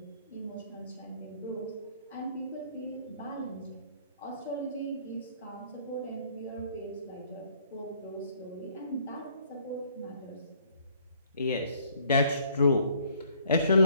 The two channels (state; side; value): inverted; both; correlation -0.61